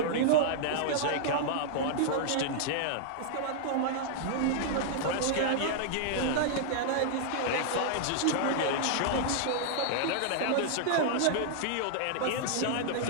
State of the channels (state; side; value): different; both; correlation -0.01